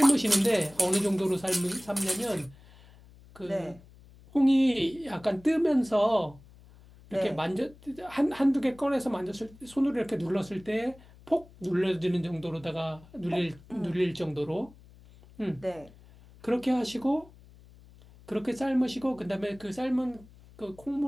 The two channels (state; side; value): noise; left; hum, 23 dB below the sound